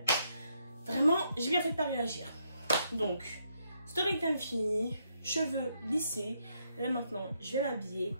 vraiment j'ai bien fait de pas réagir. Donc story time fini, cheveux lissés, là maintenant je vais m'habiller.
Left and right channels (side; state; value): both; inverted; correlation -0.76